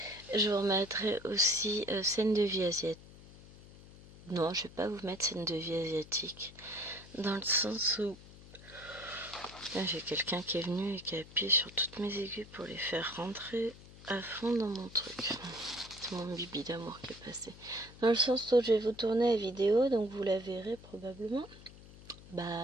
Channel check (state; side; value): noise; left; hum, 19 dB below the sound